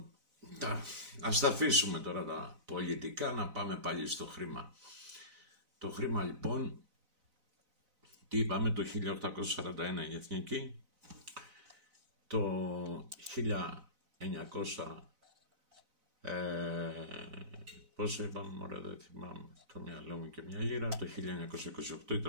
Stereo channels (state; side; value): late; left; 4.0 ms